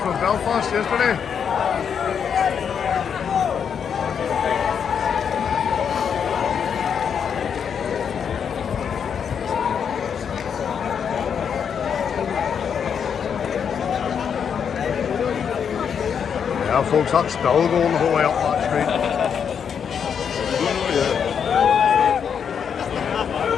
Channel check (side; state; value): right; quieter; 7.4 dB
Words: Belfast yesterday. Yeah, folks, that's still going the whole way up that street.